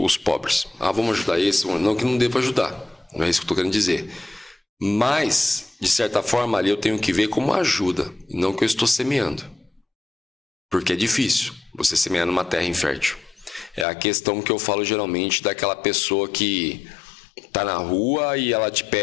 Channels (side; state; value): right; drops out; at 13.9 s